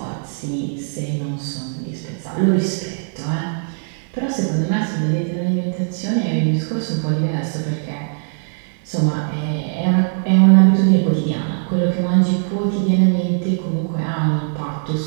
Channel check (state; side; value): silent; left; digital silence